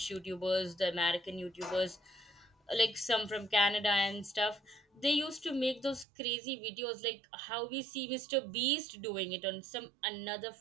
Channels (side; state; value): left; drops out; at 6.1 s